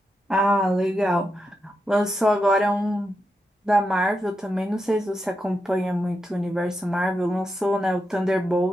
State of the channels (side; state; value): both; normal; correlation 0.86